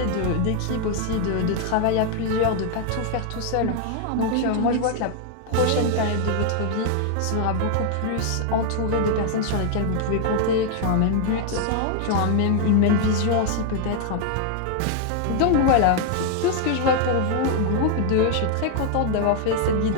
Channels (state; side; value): different; both; correlation 0.00